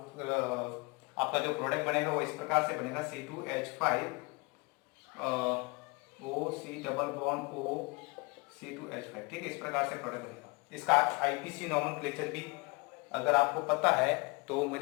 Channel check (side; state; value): right; quieter; 29.0 dB